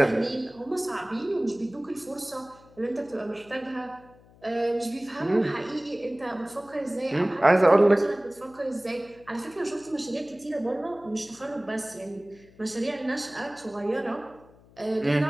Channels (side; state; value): left; noise; hum, 26 dB below the sound